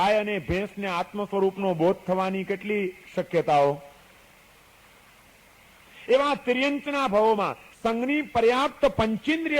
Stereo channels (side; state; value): both; identical; correlation 1.00